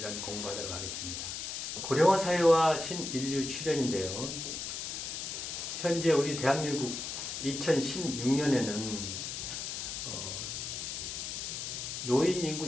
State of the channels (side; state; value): left; noise; hiss, 5 dB below the sound